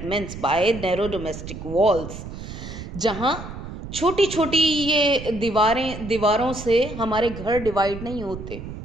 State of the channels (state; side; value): noise; right; rumble, 10 dB below the sound